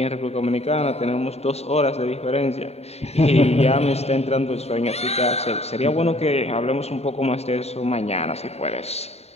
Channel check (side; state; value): right; late; 0.30 ms